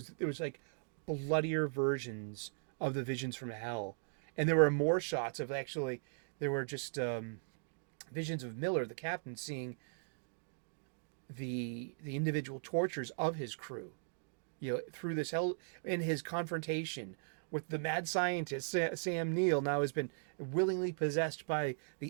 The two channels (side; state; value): left; silent; digital silence